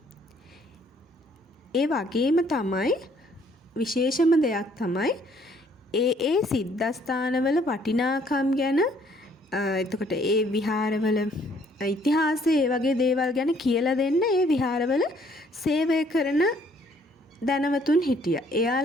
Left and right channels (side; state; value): both; normal; correlation 0.63